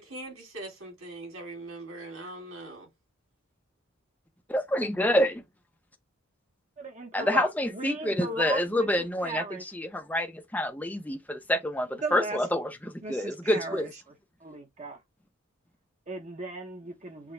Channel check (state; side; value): normal; both; correlation 0.68